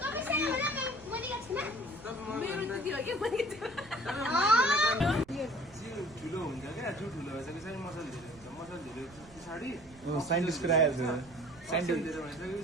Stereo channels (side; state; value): right; noise; rumble, 22 dB below the sound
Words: मेरो त्यति हो क्या मैले जिउ ठुलो हुन्छ क्या जिउ ठुलो भइसकेपछि चाहिँ मसल धेरै हुन्छ मसल धेरै पछाडि साइन्टिस्टको आएको थियो मसल धेरै भइसकेपछि